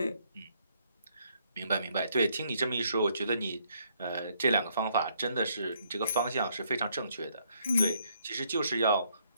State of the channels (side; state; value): both; inverted; correlation -0.69